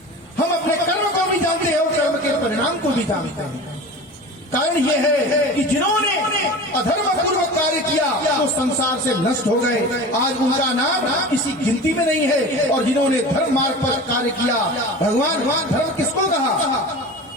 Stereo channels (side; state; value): both; normal; correlation 0.34